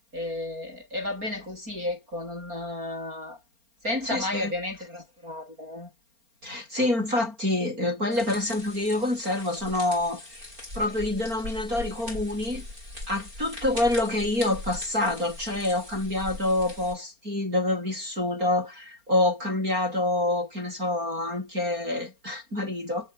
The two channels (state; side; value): late; left; 4.3 ms